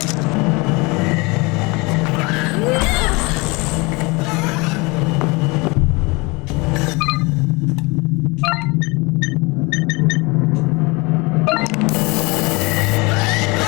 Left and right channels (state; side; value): quieter; right; 26.3 dB